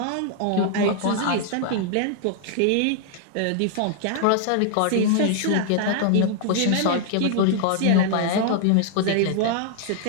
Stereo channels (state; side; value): different; both; correlation 0.00